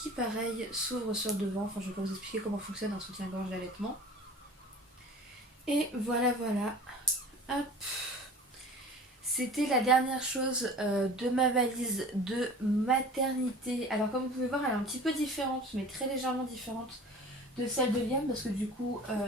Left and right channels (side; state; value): both; normal; correlation 0.41